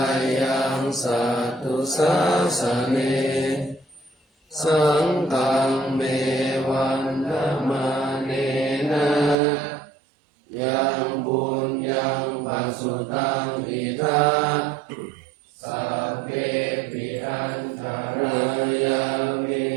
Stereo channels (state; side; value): drops out; left; at 9.3 s